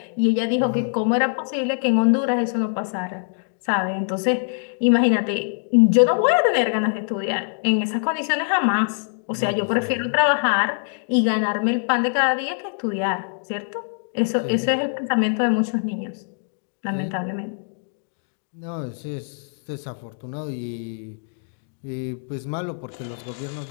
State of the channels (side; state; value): right; silent; digital silence